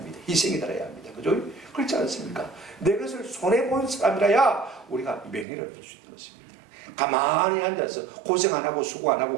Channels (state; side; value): drops out; left; at 5.5 s